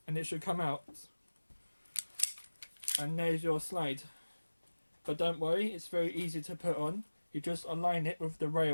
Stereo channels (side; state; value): both; inverted; correlation -1.00